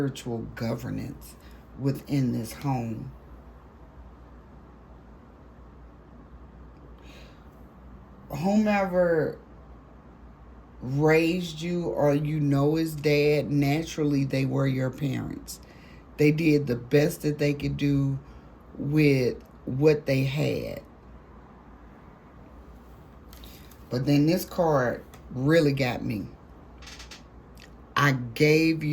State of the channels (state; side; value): identical; both; correlation 1.00